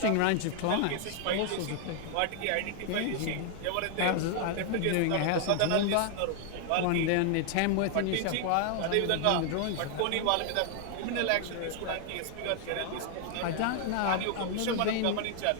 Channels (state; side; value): different; both; correlation 0.00